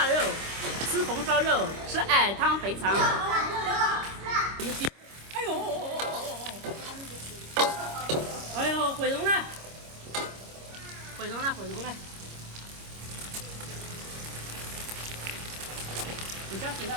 肉，吃红烧肉，吃矮汤肥肠。哎呦！哎呦，毁容了！毁容了！毁容了！你加水了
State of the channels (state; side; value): late; left; 26 ms